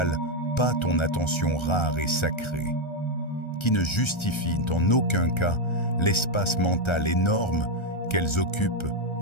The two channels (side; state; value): right; late; 1.3 ms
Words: pas ton attention rare et sacrée, qui ne justifient en aucun cas l'espace mental énorme qu'elles occupent